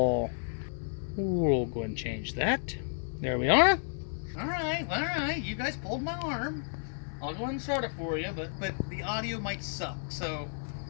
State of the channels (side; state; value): right; silent; digital silence